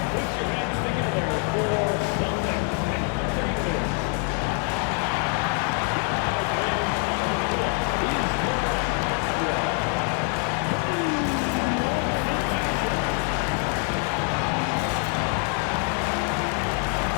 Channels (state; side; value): quieter; right; 39.6 dB